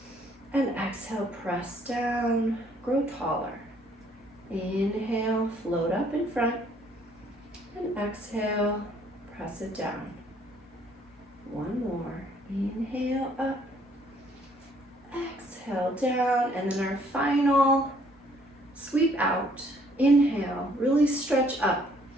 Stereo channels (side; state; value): both; normal; correlation 0.63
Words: And exhale, press down, grow taller. Inhale, float up in front. And exhale, press it down. One more. Inhale, up. Exhale, down. And then our final sweep out. Inhale, really stretch up.